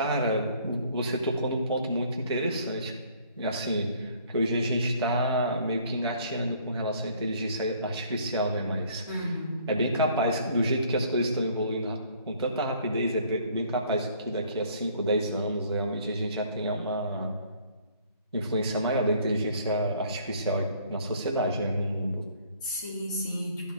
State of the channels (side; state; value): both; inverted; correlation -0.59